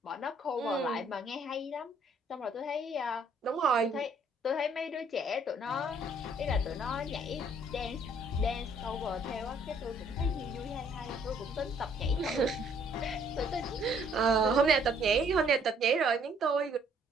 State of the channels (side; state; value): both; normal; correlation 0.63